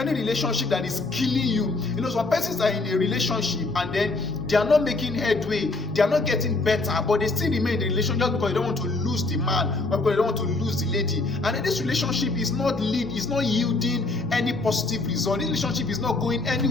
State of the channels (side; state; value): right; quieter; 3.2 dB